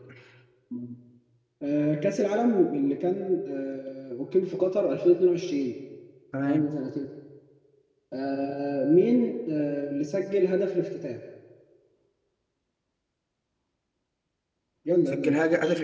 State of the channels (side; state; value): both; identical; correlation 1.00